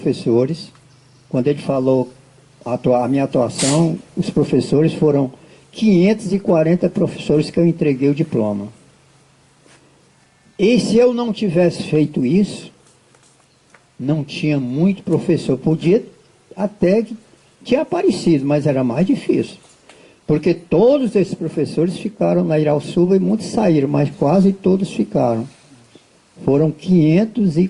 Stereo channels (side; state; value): both; identical; correlation 1.00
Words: Quando ele falou a minha atuação, os professores foram 540 professores que eu entreguei o diploma. E se eu não tivesse feito isso, não tinha muito professor. Podia até que tinha aparecido, mas era mais difícil. Porque todos esses professores ficaram na Irauçuba e muitos saíram, mas quase todos ficaram. Foram